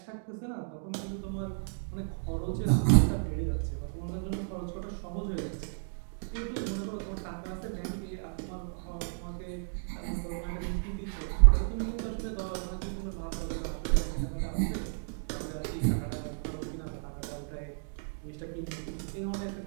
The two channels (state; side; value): silent; left; digital silence